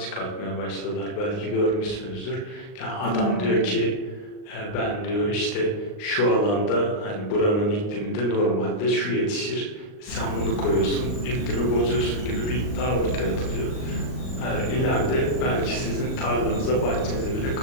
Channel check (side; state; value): right; late; 38 ms